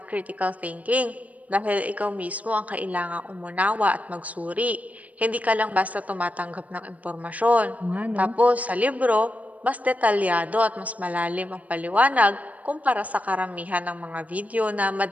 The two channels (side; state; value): left; late; 0.071 ms